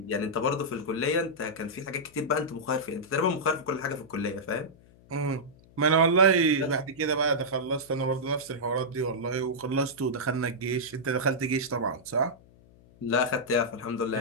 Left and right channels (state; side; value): noise; left; hum, 26 dB below the sound